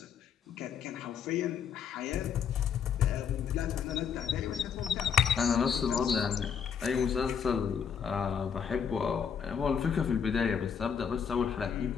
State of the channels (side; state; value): right; quieter; 7.3 dB